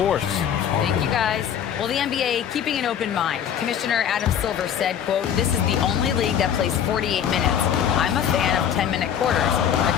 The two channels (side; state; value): right; quieter; 9.0 dB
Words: Thank you, guys. Well, the NBA keeping an open mind. Commissioner Adam Silver said, quote, "This is the only league that plays 48 minutes. I'm a fan of 10-minute quarters. A